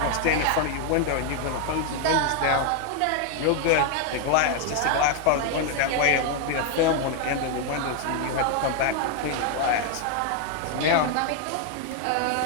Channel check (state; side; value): different; both; correlation 0.01